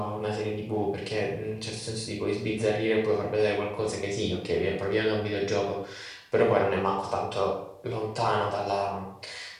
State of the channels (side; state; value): both; identical; correlation 1.00